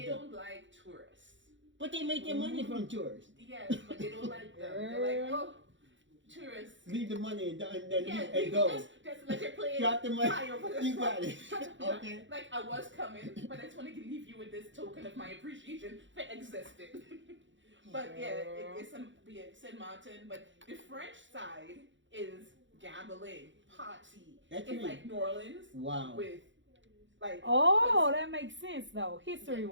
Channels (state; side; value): late; left; 0.54 ms